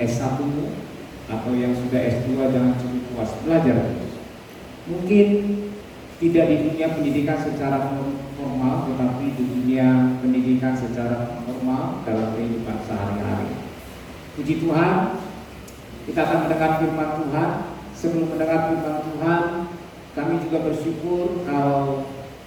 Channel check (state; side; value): identical; both; correlation 1.00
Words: atau yang sudah S2, jangan cukup puas, belajar terus. Mungkin tidak di dunia pendidikan secara formal, tetapi di dunia pendidikan secara formal dalam kehidupan sehari-hari. Puji Tuhan, kita akan mendengar firman Tuhan. Sebelum mendengar firman Tuhan, kami juga bersyukur kalau